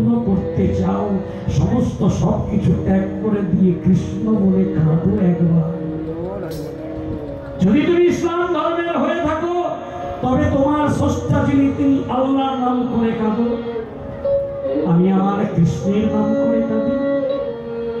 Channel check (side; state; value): both; identical; correlation 1.00